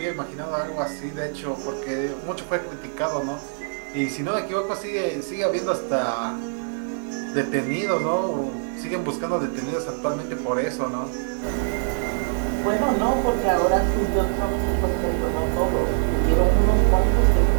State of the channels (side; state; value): left; silent; 63 dB below the other